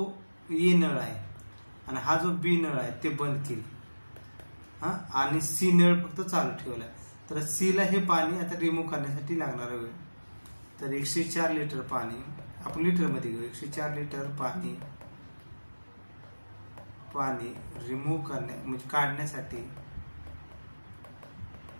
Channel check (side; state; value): both; inverted; correlation -1.00